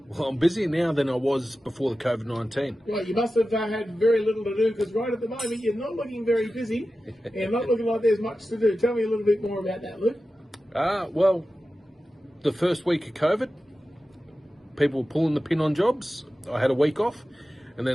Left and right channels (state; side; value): normal; both; correlation 0.94